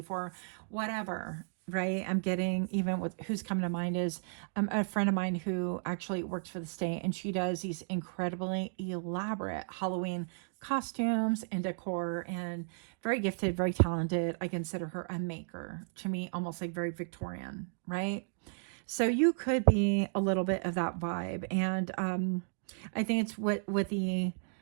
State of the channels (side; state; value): left; silent; digital silence